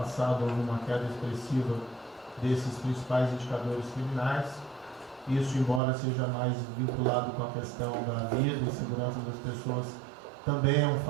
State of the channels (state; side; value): drops out; left; at 5.8 s